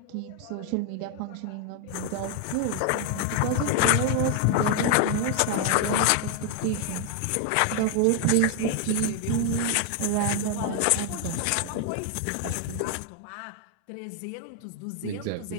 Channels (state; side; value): different; both; correlation 0.00